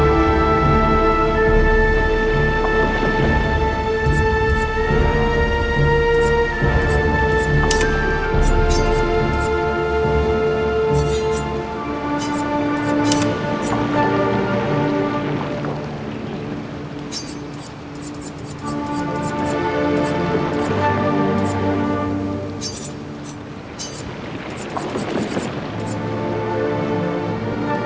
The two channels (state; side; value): identical; both; correlation 1.00